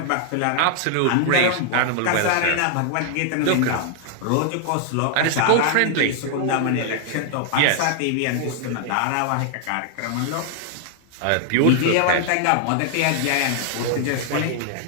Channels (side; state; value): both; different; correlation 0.00